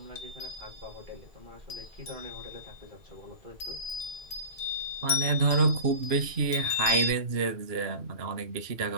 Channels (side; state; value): left; late; 2.8 ms